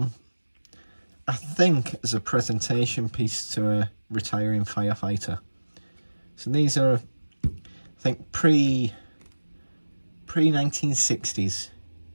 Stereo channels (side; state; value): both; inverted; correlation -1.00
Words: I think as a presentation piece to a retiring firefighter. So these are, I think, pre-1960s